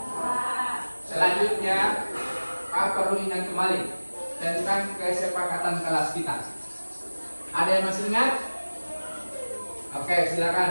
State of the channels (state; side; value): inverted; both; correlation -1.00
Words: Selanjutnya, Pak perlu ingat kembali tentang kesepakatan kelas kita. Ada yang masih ingat? Oke,